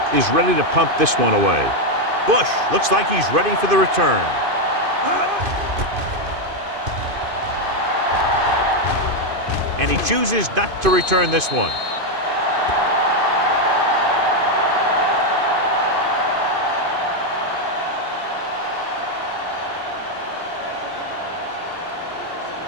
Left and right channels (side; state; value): left; late; 2.5 ms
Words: is ready to pump this one away. Bush looks like he's ready for the return. And he chooses not to return this one.